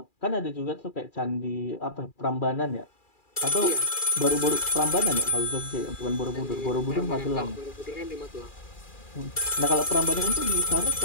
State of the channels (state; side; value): late; right; 2.4 ms